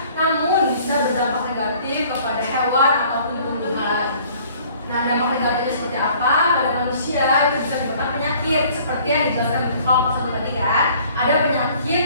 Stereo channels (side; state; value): both; inverted; correlation -0.55